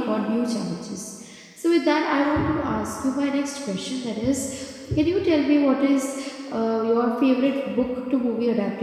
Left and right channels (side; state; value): both; identical; correlation 1.00